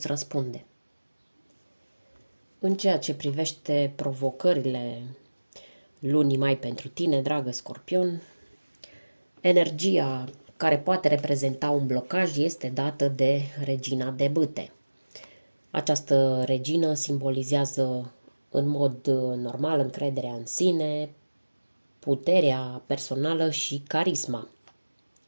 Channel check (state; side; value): inverted; both; correlation -1.00